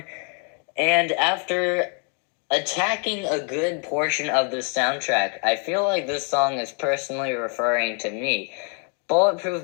And after attacking a good portion of the soundtrack, I feel like this song is personally referring to me.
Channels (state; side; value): quieter; right; 38.9 dB